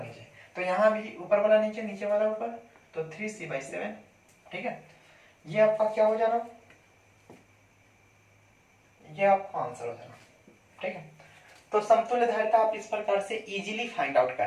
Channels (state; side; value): identical; both; correlation 1.00